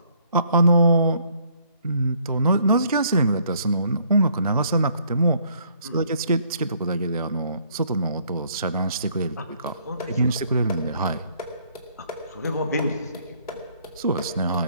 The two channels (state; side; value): inverted; both; correlation -0.64